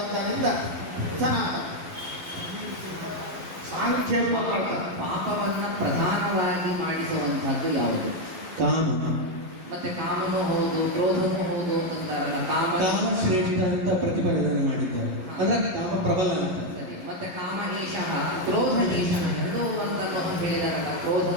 ಸನಾತನ. ಸಾಂಖ್ಯ ಪಾಪವನ್ನ ಪ್ರಧಾನವಾಗಿ ಮಾಡಿಸುವಂತಹದ್ದು ಯಾವುದು? ಕಾಮ. ಮತ್ತೆ ಕಾಮನೂ ಹೌದು, ಕ್ರೋಧನೂ ಹೌದು ಅಂತಾರಲ್ಲ. ಕಾಮ ಶ್ರೇಷ್ಠ ಅಂತ ಪ್ರತಿಪಾದನೆ ಮಾಡಿದ್ದಾರೆ. ಅಂದ್ರೆ ಕಾಮ ಪ್ರಬಲ ಅಂತ. ಸರಿ. ಮತ್ತೆ ಕಾಮ ಏಷಃ ಕ್ರೋಧ ಏಷಃ ಎರಡೂ ಅಂತ ಹೇಳಿದಾರಲ್ಲ.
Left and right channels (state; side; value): late; left; 11 ms